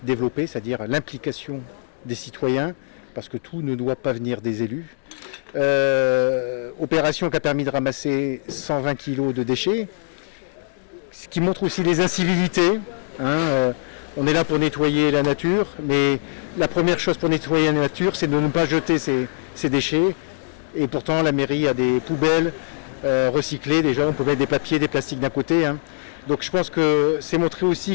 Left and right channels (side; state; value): right; silent; digital silence